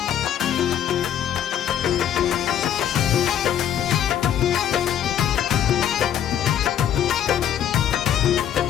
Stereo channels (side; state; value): right; quieter; 10.0 dB